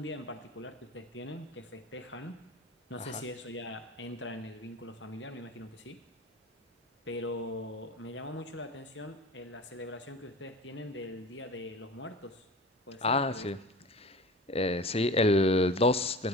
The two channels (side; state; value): both; normal; correlation 0.36